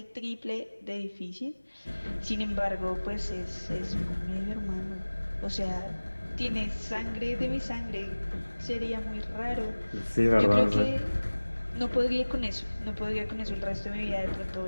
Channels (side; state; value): both; inverted; correlation -1.00